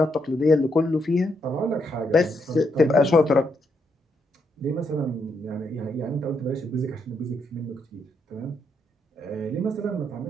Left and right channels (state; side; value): normal; both; correlation 0.78